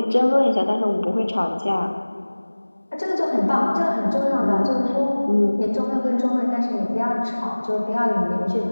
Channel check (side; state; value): both; inverted; correlation -1.00